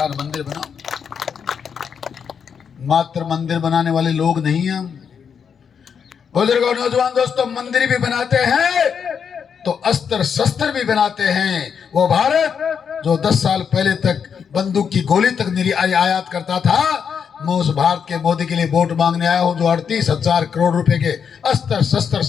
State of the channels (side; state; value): right; quieter; 7.0 dB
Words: मंदिर बनाऊं। मात्र मंदिर बनाने वाले लोग नहीं हैं। बुजुर्गों, नौजवान दोस्तों, मंदिर भी बनाते हैं तो अस्त्र शस्त्र भी बनाते हैं। वो भारत जो 10 साल पहले तक बंदूक की गोली तक आयात करता था, मैं उस भारत के मोदी के लिए वोट मांगने आया हूं, जो 38,000 करोड़ रुपए के अस्त्र शस्त्र